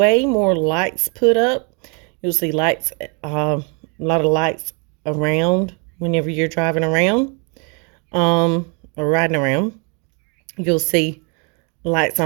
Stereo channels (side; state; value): left; quieter; 34.4 dB